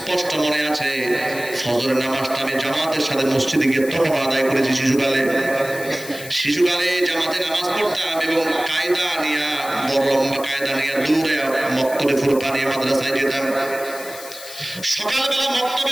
মনে আছে, ফজরের নামাজটা আমি জামাতের সাথে মসজিদে গিয়ে তখন আদায় করেছি। শিশুকালে জামাতে নামাজ পড়তাম এবং কায়দা নিয়ে, বড় লম্বা কায়দা নিয়ে দূরে মক্তবে ফুরকানিয়া মাদ্রাসায় যেতাম। সকালবেলা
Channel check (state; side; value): noise; left; hiss, 14 dB below the sound